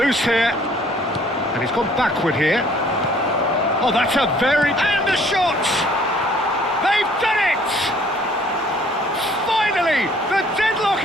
here. And he's gone backward here. Oh, that's a very... And the shot! They've done it! Finally, the deadlock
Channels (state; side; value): normal; both; correlation 0.58